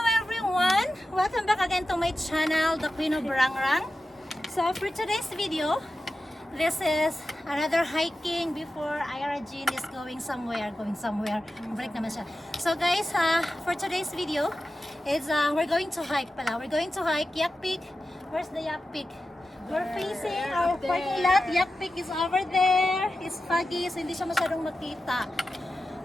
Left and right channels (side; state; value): both; normal; correlation 0.92